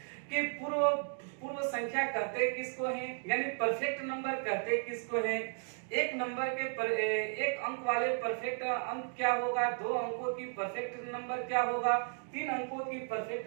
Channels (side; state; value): left; silent; 55 dB below the other